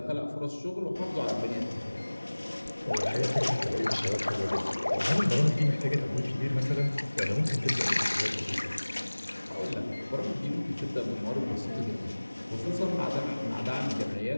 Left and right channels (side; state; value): both; inverted; correlation -1.00